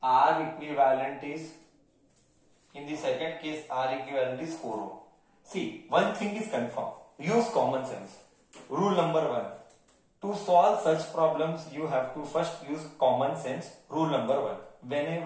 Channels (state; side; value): identical; both; correlation 1.00